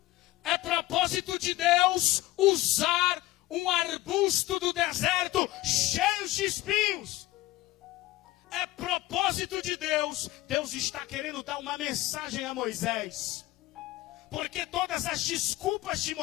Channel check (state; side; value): quieter; right; 17.5 dB